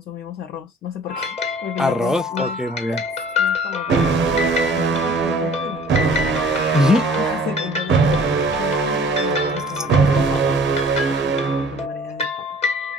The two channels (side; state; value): both; normal; correlation 0.51